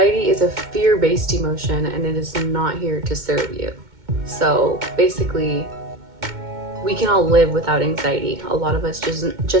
is a fear-based emotion, and it is not here to serve you. So basically, we can all live without anxiety. A lot of us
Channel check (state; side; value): late; left; 2.1 ms